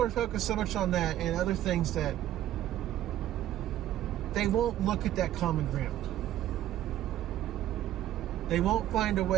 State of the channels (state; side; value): quieter; left; 12.8 dB